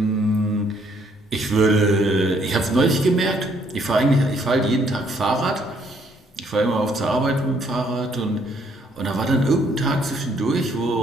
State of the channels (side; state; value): both; normal; correlation 0.67